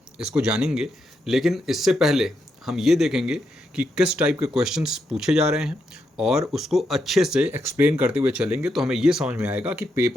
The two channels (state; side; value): normal; both; correlation 0.82